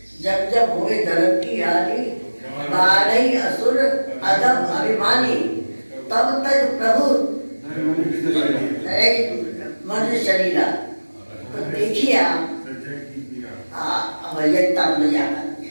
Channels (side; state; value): both; inverted; correlation -1.00